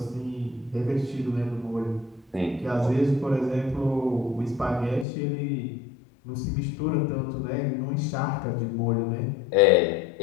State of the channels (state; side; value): drops out; right; at 5.1 s